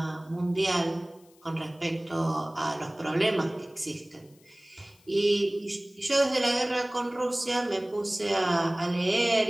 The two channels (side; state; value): left; noise; hiss, 30 dB below the sound